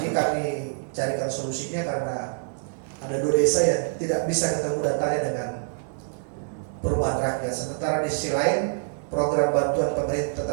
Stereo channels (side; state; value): left; silent; 61 dB below the other